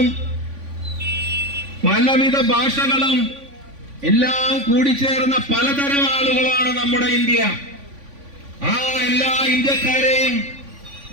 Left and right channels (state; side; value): late; left; 3.5 ms